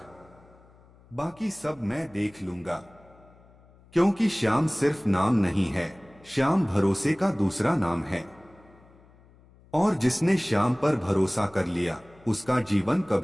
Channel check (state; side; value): noise; left; hum, 27 dB below the sound